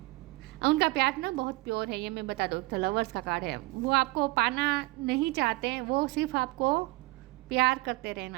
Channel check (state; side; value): quieter; left; 22.3 dB